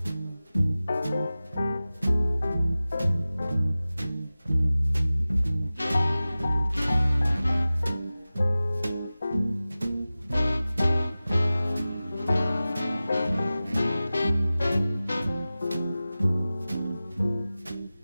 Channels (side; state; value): both; inverted; correlation -0.97